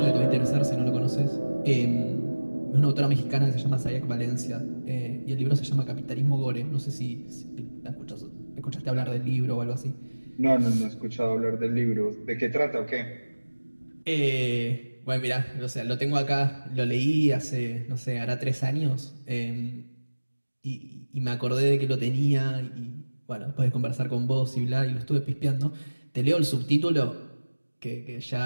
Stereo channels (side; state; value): both; inverted; correlation -1.00